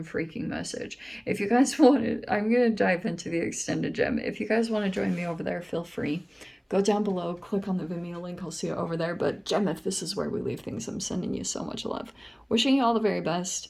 freaking message. If you guys want to, I'm going to dive into the extended gem. If you guys want to join me over there, feel free. Go down below, click on the Vimeo link. I'll see you over there. But Gemeth, this is where we leave things. I'm sending you so much love. Wishing you all the very best,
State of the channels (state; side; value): identical; both; correlation 1.00